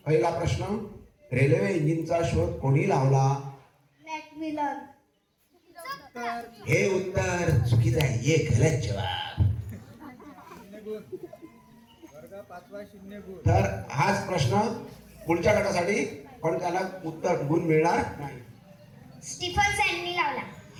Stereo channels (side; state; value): both; identical; correlation 1.00